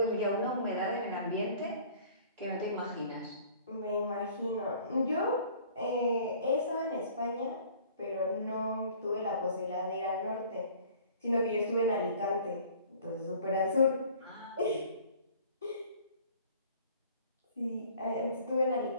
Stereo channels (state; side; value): inverted; both; correlation -0.51